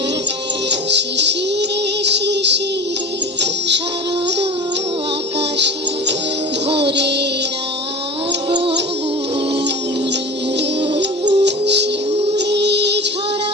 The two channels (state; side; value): normal; both; correlation 0.34